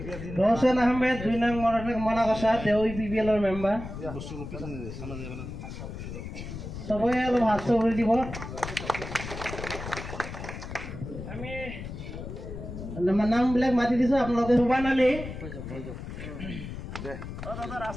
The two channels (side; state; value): left; noise; rumble, 9 dB below the sound